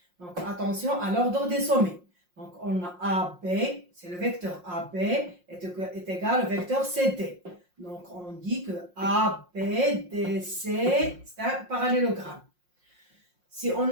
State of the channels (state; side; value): late; left; 5.6 ms